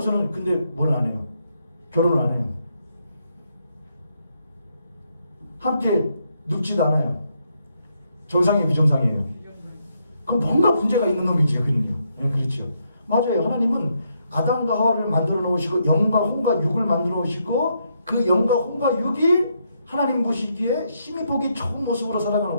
근데 뭘 안 해요? 결혼을 안 해요. 함께 눕지도 않아요. 정상이에요, 비정상이에요? 그럼 뭔가 문제가 있는 놈이죠, 그는요. 네, 그렇죠. 맞아요. 하나님은 아담과 하와를 만들어 놓으시고 영과 혼과 육을 만들어 놓으시고 그 영과 혼과 육이 하나님 보시기에 힘이 보기 좋은 모습으로 살아가는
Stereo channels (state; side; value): inverted; both; correlation -0.77